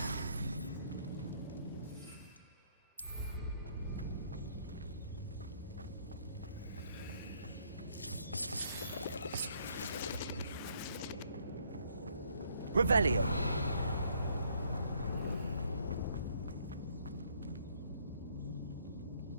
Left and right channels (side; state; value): both; inverted; correlation -0.65